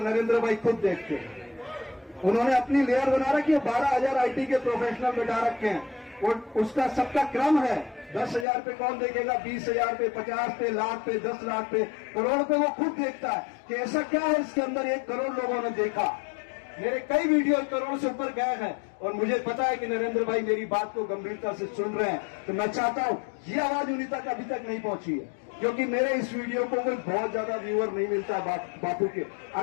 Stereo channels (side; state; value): right; drops out; at 8.5 s